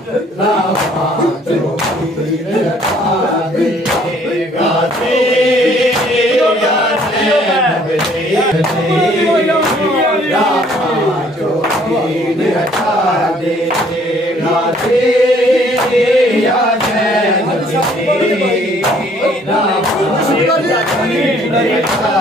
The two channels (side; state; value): both; normal; correlation 0.60